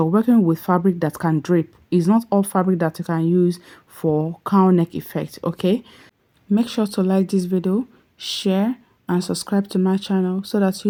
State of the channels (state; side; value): identical; both; correlation 1.00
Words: working with fabric that can drape. It's not all fabric that you can use for cowl neck effect. Okay, make sure to like this video, share and subscribe to my channel so that